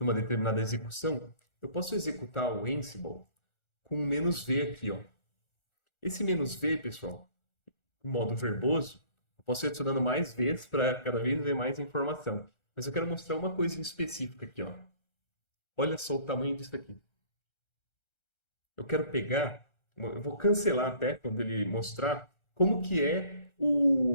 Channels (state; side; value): late; right; 1.3 ms